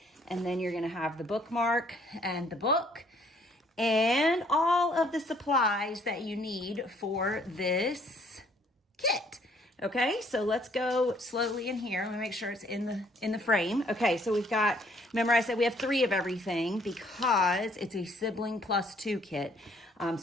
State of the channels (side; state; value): both; normal; correlation 0.63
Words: and then you're gonna have the bookmark and the book, and all of the supplies that you need for this kit. Okay, so let's go slowly in here. Let me make sure it's in the frame. Okay, so we've got, remember I said we have 3 of everything because it's a sibling plus 2 kit.